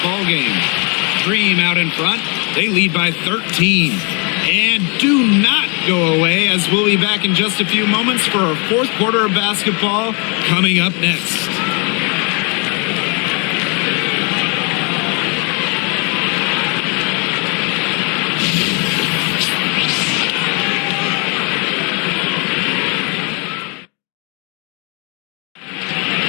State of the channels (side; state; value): right; quieter; 34.0 dB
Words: ball game. Dream out in front. They lead by 13. And do not go away, as we'll be back in just a few moments for our fourth quarter of basketball coming up next.